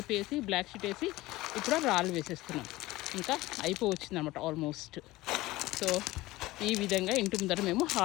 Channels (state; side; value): quieter; right; 18.7 dB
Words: వేసి బ్లాక్ షీట్ వేసి ఇప్పుడు రాళ్ళు వేసేస్తున్నాం. ఇంకా అయిపోవచ్చింది అనమాట ఆల్మోస్ట్. సో ఈ విధంగా ఇంటి ముందర మేము